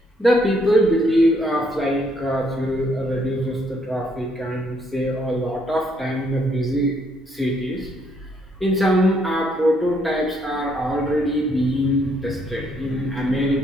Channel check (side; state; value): both; normal; correlation 0.70